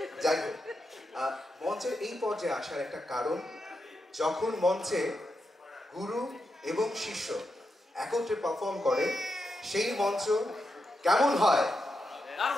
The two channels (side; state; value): both; normal; correlation 0.86